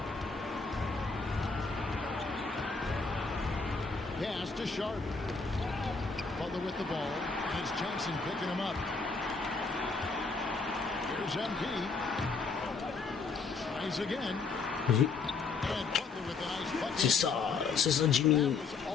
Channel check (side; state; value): right; quieter; 4.5 dB